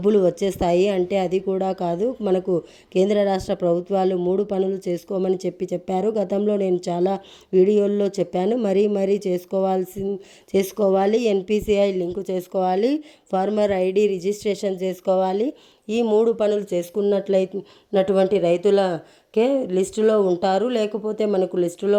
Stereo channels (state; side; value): identical; both; correlation 1.00